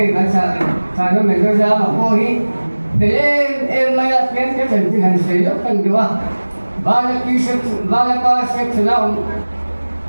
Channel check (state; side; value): inverted; both; correlation -1.00